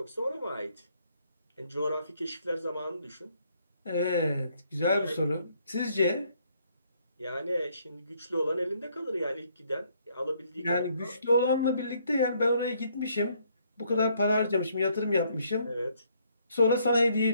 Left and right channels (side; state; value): both; inverted; correlation -0.68